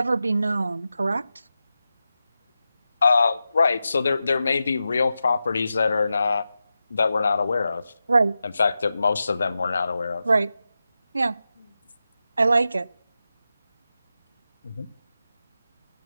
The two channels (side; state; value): both; inverted; correlation -0.91